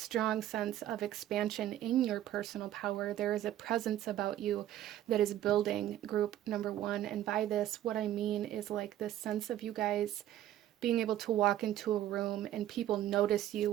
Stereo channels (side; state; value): left; quieter; 12.6 dB